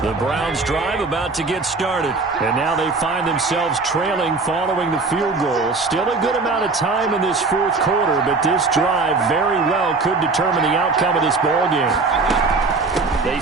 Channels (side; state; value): left; quieter; 3.9 dB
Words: Browns drive about to get started. And now they find themselves trailing following the field goal. Still a good amount of time in this 4th quarter, but this drive very well could determine the outcome of this ball game. They